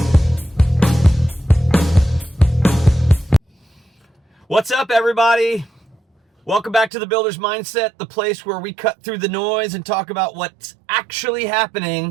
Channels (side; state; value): left; drops out; at 6.9 s